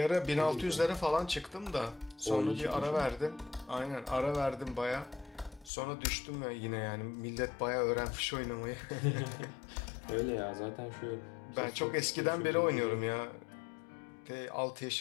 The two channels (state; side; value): drops out; right; at 5.7 s